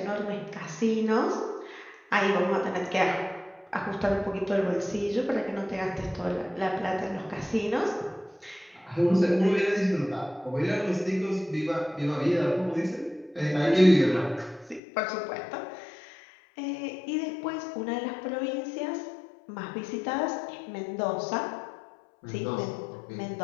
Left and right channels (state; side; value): drops out; right; at 14.8 s